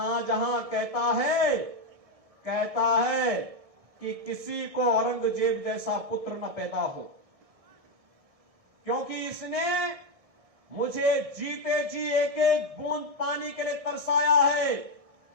कहता है कि किसी को औरंगजेब जैसा पुत्र न पैदा हो, क्योंकि इसने मुझे जीते जी एक एक बूंद पानी के लिए तरसाया है।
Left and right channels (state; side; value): late; left; 1.6 ms